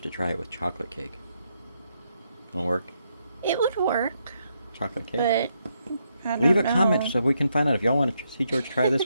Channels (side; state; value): both; inverted; correlation -0.78